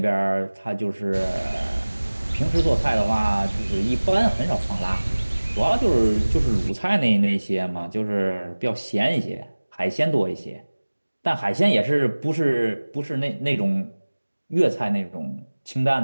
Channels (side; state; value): both; inverted; correlation -1.00